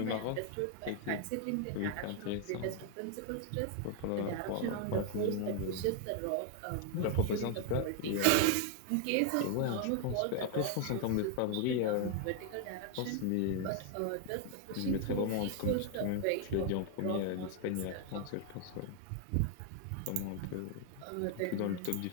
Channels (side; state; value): both; different; correlation 0.00